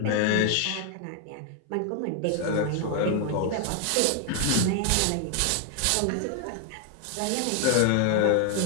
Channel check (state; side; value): different; both; correlation 0.00